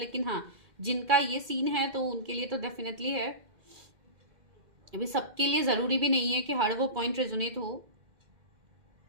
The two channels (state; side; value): late; left; 2.1 ms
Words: हाँ जिनका ये सीन है तो उनके लिए तो डेफिनेटली है। अभी सबके लिए जरूरी भी नहीं है कि हर वो पॉइंट रेजोनेट हो।